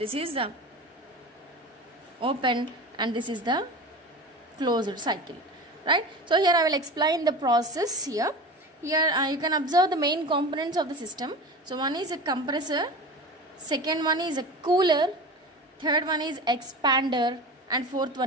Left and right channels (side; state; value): both; normal; correlation 0.31